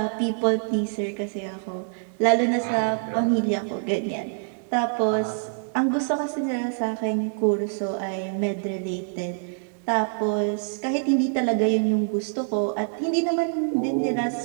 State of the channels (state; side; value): silent; left; digital silence